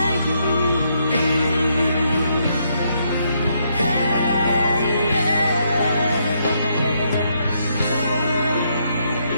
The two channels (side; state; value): both; inverted; correlation -0.75